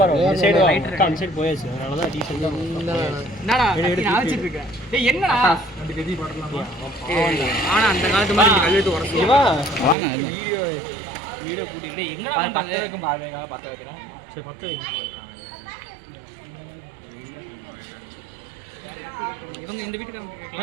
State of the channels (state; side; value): drops out; left; at 10.0 s